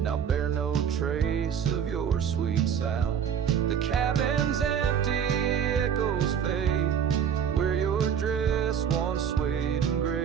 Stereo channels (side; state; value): left; quieter; 8.1 dB